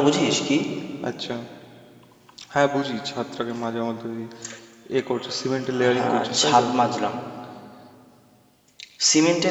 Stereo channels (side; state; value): both; identical; correlation 1.00